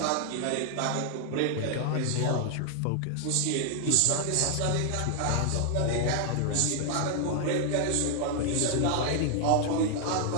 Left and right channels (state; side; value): different; both; correlation 0.00